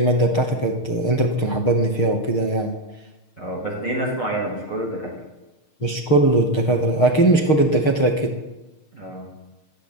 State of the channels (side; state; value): right; late; 6.6 ms